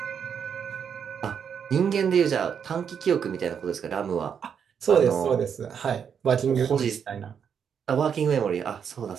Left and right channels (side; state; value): left; quieter; 7.5 dB